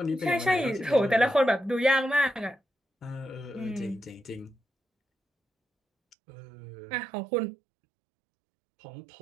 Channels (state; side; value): drops out; left; at 6.2 s